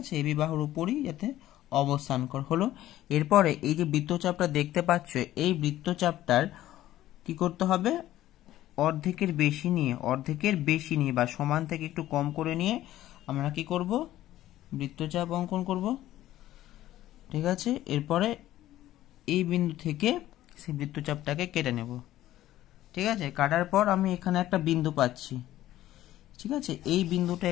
এবি বাহুর উপরই যাতে অবস্থান হলো। এরপরে এই যে বৃত্তচাপটা দেখতে পাচ্ছ, এই বৃত্তচাপটার কি করতে হবে, অর্ধেকের বেশি নিয়ে বা সমান থেকে একটু কম করে নিয়ে আমরা কি করব, বৃত্তচাপ অঙ্কন করব, ঠিক আছে। এরপরে এই বিন্দু থেকে সেই বৃত্তচাপটাকে কেটে নেব, ঠিক আছে। কাটার পর আমি এখানে একটা বিন্দু পাচ্ছি, ঠিক আছে। এই বিন্দুটা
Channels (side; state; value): right; quieter; 14.1 dB